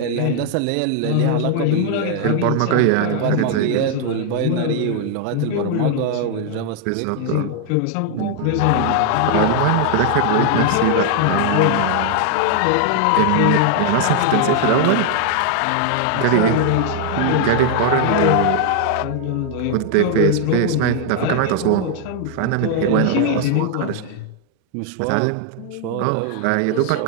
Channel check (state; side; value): different; both; correlation 0.00